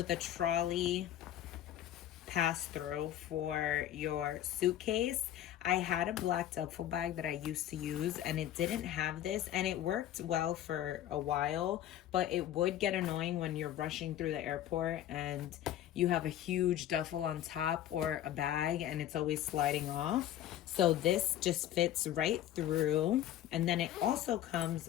a trolley pass-through for your suitcase. I had a black duffel bag that I used to use and it didn't have this, and it worked well for a while, but it would get annoying when you're rushing through the airport and you have a huge duffel on top or a bag and it's always sliding off. So this just fits right through. And then it also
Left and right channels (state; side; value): quieter; right; 11.9 dB